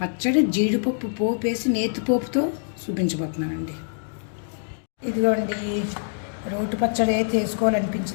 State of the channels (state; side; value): silent; right; digital silence